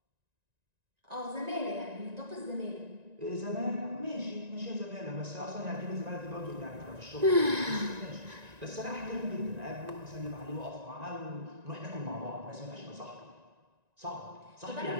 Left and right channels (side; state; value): left; late; 1.9 ms